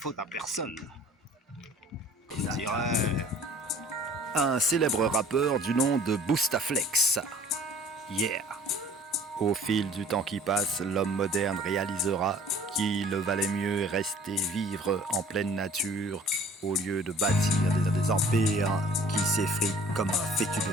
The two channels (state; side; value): normal; both; correlation 0.50